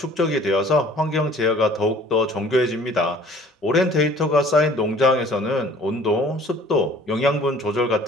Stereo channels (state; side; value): normal; both; correlation 0.52